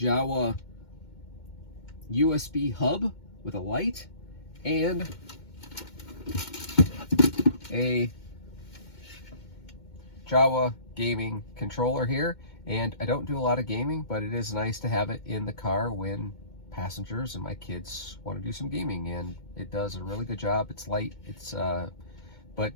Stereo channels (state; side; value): late; right; 2.2 ms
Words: USB hub with a light and a Jawa gaming controller here. And I don't do a lot of gaming, but it is nice to have it in the car when passengers and my kids want to do some gaming, and it does a really good job. It's light, it's but